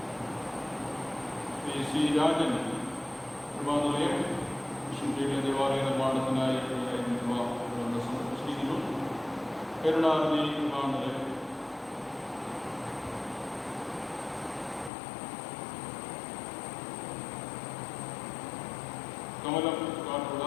ശ്രീ രാജൻ കൃപാനിലയം വിശുദ്ധിയുടെ ദേവാലയ നിർമ്മാണത്തിനായി സമർപ്പിച്ചിരിക്കുന്നു. കരുണാനിധി കൃപാനിലയം, കമലം കാട്ടുള്ള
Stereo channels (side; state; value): right; drops out; at 14.9 s